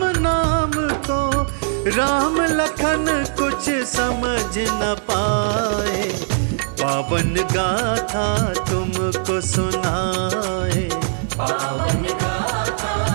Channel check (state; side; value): silent; left; digital silence